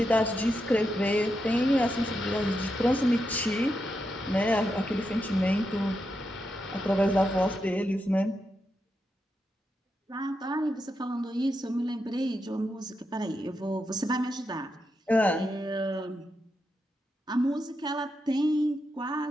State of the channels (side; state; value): both; normal; correlation 0.85